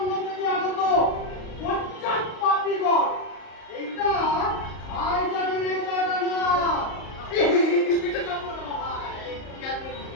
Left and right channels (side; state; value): right; late; 38 ms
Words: থেকে আগত পশ্চাৎ পাপীগণ, এই